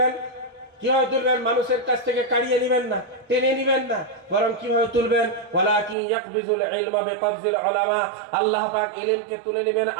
কিভাবে তুলবেন? মানুষের কাছ থেকে কাড়িয়ে নেবেন না, টেনে নেবেন না, বরং কিভাবে তুলবেন? ওয়ালাকিন ইয়াকবিজুল ইলমা বিকবজিল উলামা। আল্লাহ পাক ইলমকে তুলে নেবেন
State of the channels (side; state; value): left; drops out; at 6.0 s